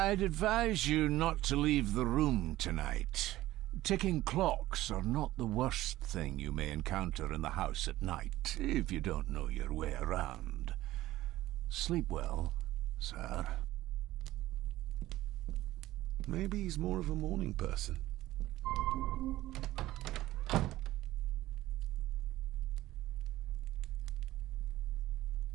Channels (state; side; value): quieter; left; 16.0 dB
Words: advise you not to leave the room tonight. Ticking clocks are not the worst thing you may encounter in the house at night, if you don't know your way around. Sleep well, sir. Maybe he's more of a morning person.